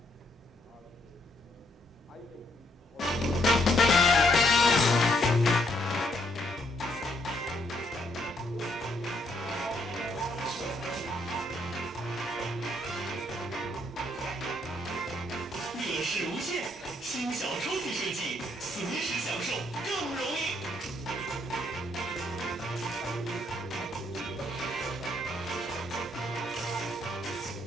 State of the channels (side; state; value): both; normal; correlation 0.73